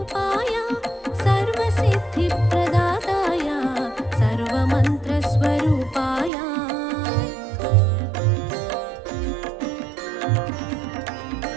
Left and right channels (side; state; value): left; drops out; at 6.3 s